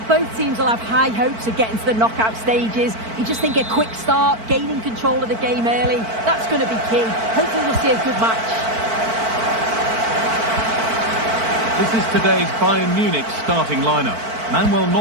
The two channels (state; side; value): late; left; 4.5 ms